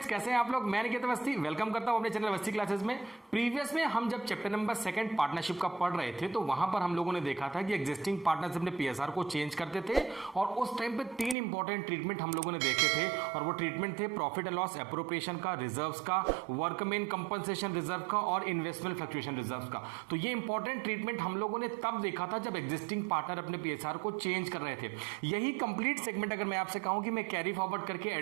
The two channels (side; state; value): left; drops out; at 11.4 s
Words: कैसे हैं आप लोग। मैं निकेत अवस्थी वेलकम करता हूं अपने चैनल अवस्थी क्लासेस में। प्रीवियस में हम जब चैप्टर नंबर 2 पार्टनरशिप का पढ़ रहे थे तो वहां पर हम लोगों ने देखा था कि एग्जिस्टिंग पार्टनर्स अपने पीएसआर को चेंज करते थे और उस टाइम पे 3 इंपॉर्टेंट ट्रीटमेंट हम लोगों ने देखे थे और वो ट्रीटमेंट थे प्रॉफिट एंड लॉस एप्रोप्रिएशन का, रिजर्व्स का, वर्कमैन कंपनसेशन रिजर्व का और इन्वेस्टमेंट फ्लक्चुएशन रिजर्व का। तो ये इंपॉर्टेंट ट्रीटमेंट हम लोगों ने तब देखा था जब एग्जिस्टिंग पार्टनर अपने पीएसआर को चेंज कर रहे थे। यही कंप्लीट सेगमेंट अगर मैं आपसे कहूं कि मैं कैरी फॉरवर्ड करके